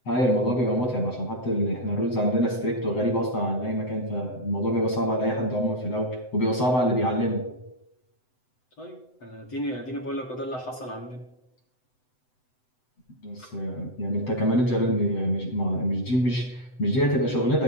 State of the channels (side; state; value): right; late; 7.9 ms